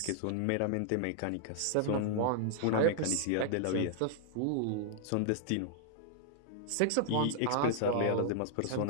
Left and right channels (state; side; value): different; both; correlation -0.01